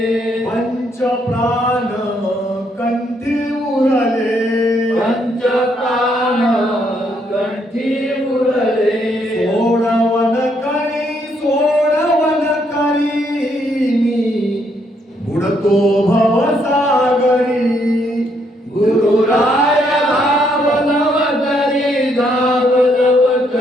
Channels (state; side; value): normal; both; correlation 0.73